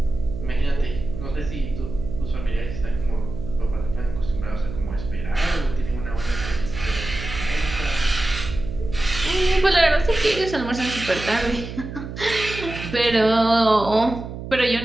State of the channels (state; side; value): noise; right; hum, 9 dB below the sound